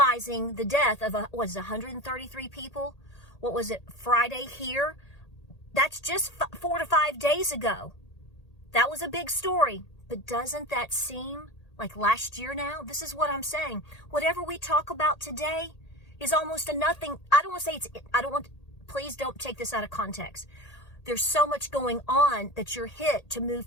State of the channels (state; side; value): late; right; 1.8 ms